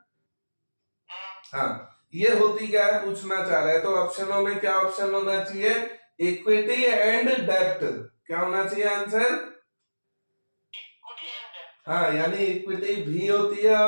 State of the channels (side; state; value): both; inverted; correlation -1.00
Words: हाँ, ये होती क्या है पूछना चाह रहा है। तो ऑप्शनों में क्या ऑप्शन होना चाहिए, इक्विटी एंड डेप्ट। क्या होना चाहिए आंसर, हाँ, यानी इक्विटी भी होती है